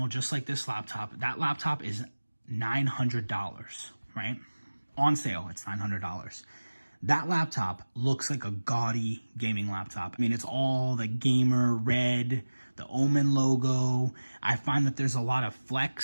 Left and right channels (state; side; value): inverted; both; correlation -1.00